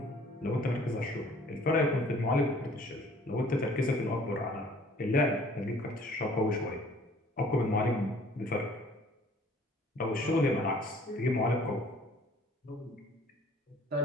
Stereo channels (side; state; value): both; normal; correlation 0.55